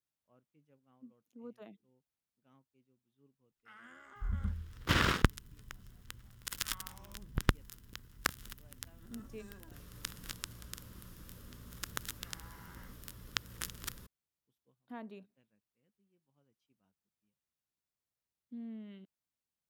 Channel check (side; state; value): both; identical; correlation 1.00